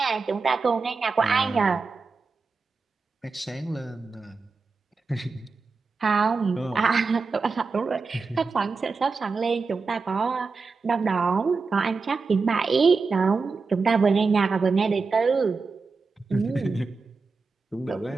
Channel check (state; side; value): quieter; left; 4.4 dB